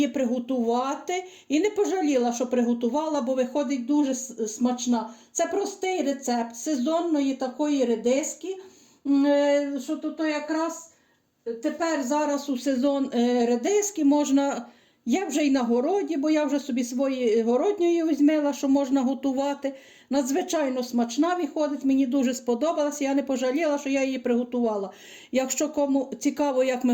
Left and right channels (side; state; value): both; identical; correlation 1.00